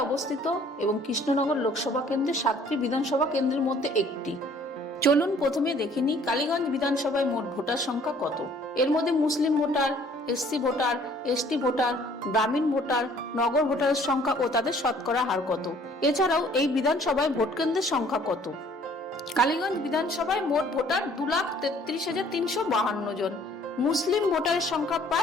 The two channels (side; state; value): both; normal; correlation 0.57